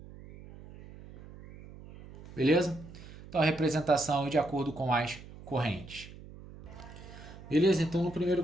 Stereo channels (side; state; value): right; noise; hum, 17 dB below the sound